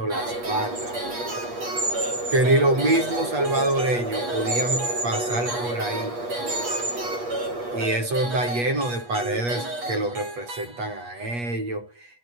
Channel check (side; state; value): left; late; 8.4 ms